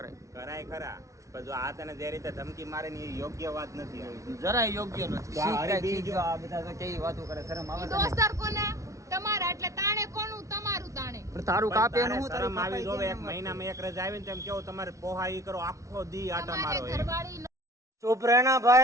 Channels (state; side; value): late; left; 0.15 ms